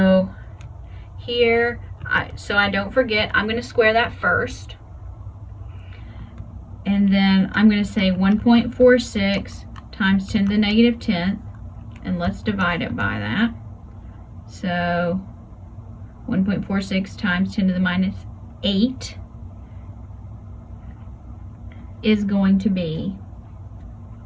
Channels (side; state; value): both; identical; correlation 1.00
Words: here, so I don't forget, I'm going to square that first. And then I'm going to say 1.46 times 10 to the negative 10th. And let's divide it by that. So 1.46 times 10 to the minus 8 is going to be